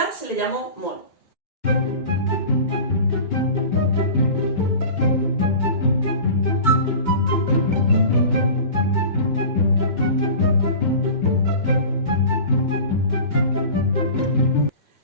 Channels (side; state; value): right; late; 2.2 ms